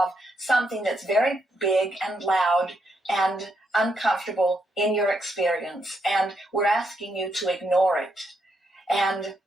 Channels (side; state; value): both; normal; correlation 0.79